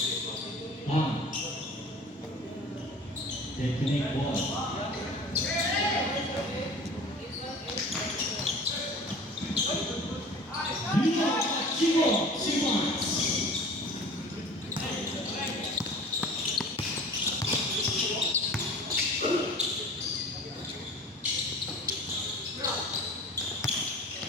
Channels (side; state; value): both; normal; correlation 0.42